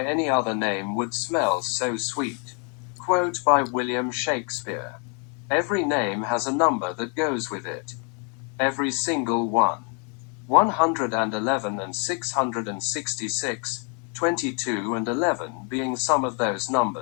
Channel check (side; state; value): right; quieter; 37.9 dB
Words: any other name would smell so sweet. Quote by William Shakespeare. Every name has a number that goes with it. Every single one. 111 and 666, 22 and 11 being some of those